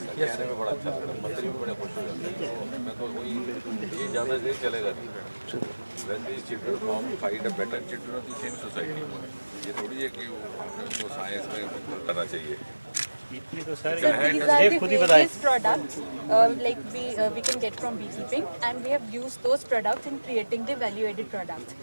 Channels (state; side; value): inverted; both; correlation -1.00